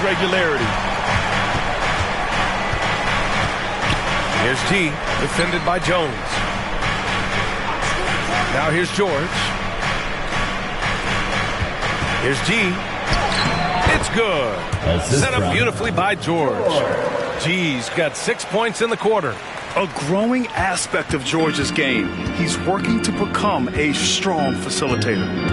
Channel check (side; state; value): both; identical; correlation 1.00